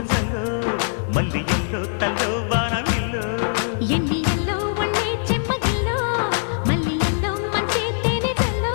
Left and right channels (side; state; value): right; silent; digital silence